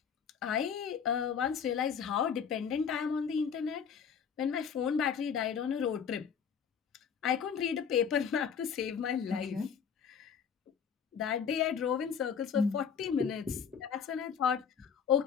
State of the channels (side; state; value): right; quieter; 7.0 dB